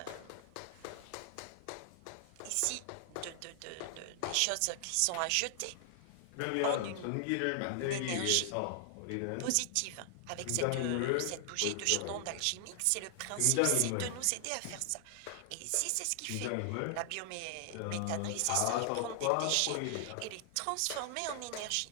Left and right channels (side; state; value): both; different; correlation 0.00